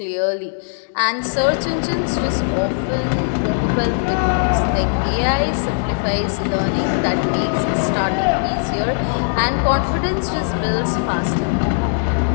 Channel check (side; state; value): right; silent; digital silence